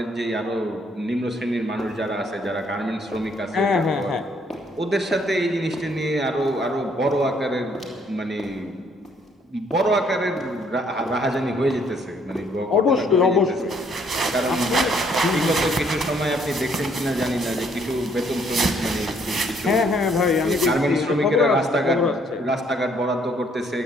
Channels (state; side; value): normal; both; correlation 0.66